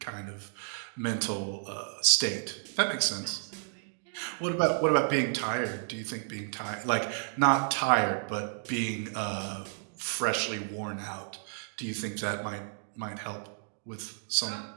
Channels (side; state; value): left; silent; digital silence